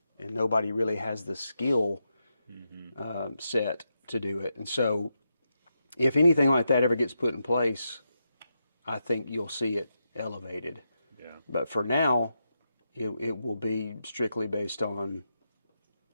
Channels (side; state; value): both; inverted; correlation -0.85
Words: and nobody really has the skill set to do it. And so, if anything like that ever gets put in place, I think you'll see it elevated. Yeah. But for now, it will be strictly based on